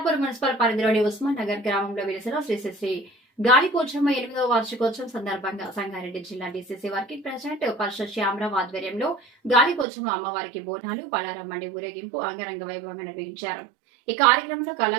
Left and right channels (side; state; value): left; drops out; at 9.9 s